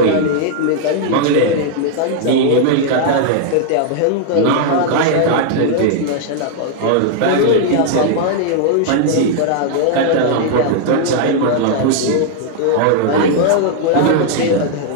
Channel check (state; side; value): different; both; correlation -0.01